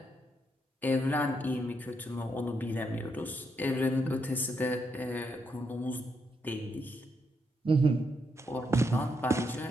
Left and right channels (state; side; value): normal; both; correlation 0.79